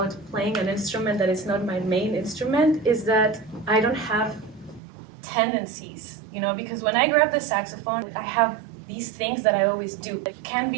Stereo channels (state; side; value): drops out; left; at 4.8 s